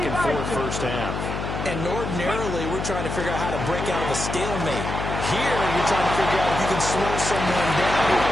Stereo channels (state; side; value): noise; left; hum, 4 dB below the sound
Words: first half. And ordinarily, we're trying to figure out how to break out of a stalemate. Here, you're trying to figure out if you can slow someone down.